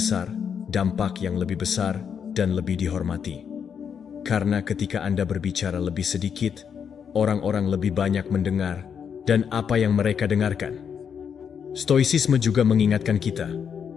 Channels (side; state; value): right; quieter; 7.3 dB